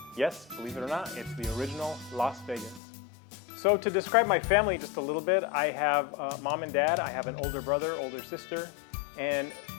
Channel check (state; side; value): drops out; right; at 2.8 s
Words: Yes, believe it or not, it's the original Las Vegas. So to describe my family just a little bit, I have mom and dad, I have an older brother, older sister, and